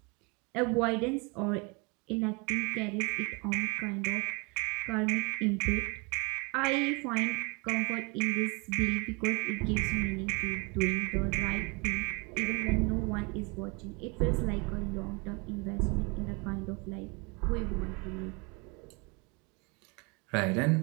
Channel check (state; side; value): quieter; left; 30.2 dB